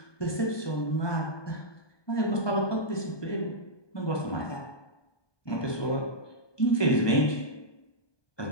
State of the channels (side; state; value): right; late; 1.2 ms